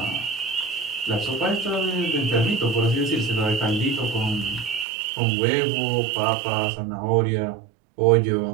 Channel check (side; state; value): left; drops out; at 4.9 s